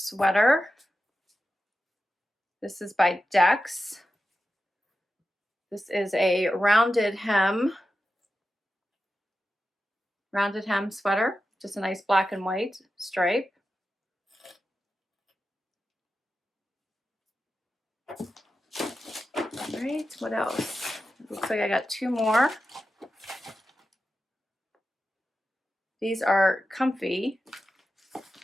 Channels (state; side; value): normal; both; correlation 0.91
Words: This is by Dex. This is a rounded hem sweater. Just a nice black and white stripe. All right, what else? Looks like I got two more. These are comfy